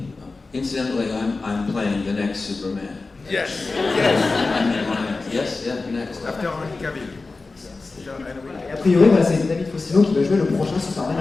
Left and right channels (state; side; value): quieter; right; 3.7 dB